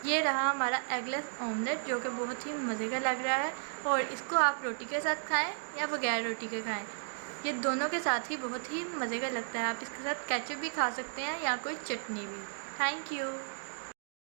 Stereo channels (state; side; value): silent; left; digital silence